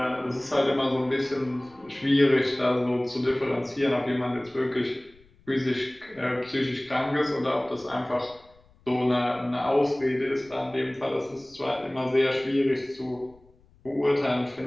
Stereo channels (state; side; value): noise; left; rumble, 29 dB below the sound